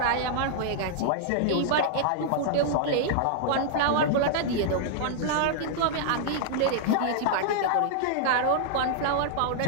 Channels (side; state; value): both; different; correlation -0.01